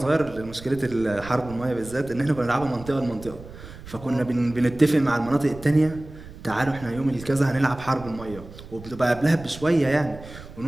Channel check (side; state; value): right; noise; rumble, 16 dB below the sound